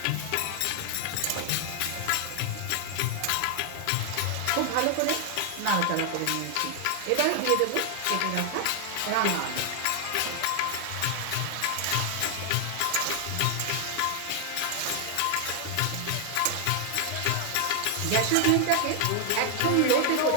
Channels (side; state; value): both; different; correlation 0.00